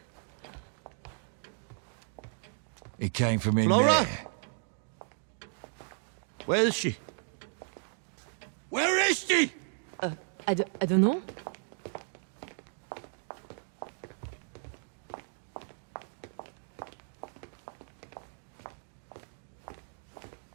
It came from in Laura? there. Where is she? Where is she? I don't know.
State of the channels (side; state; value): left; silent; digital silence